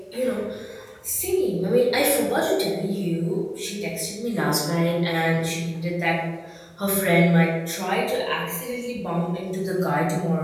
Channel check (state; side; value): identical; both; correlation 1.00